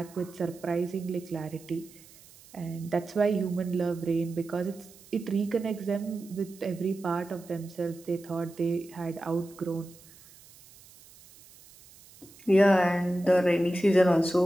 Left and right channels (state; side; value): noise; right; hiss, 23 dB below the sound